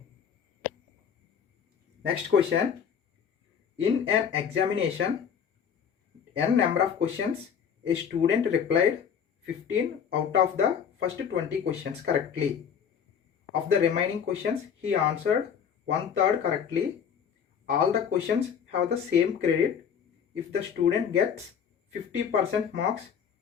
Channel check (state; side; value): quieter; right; 7.7 dB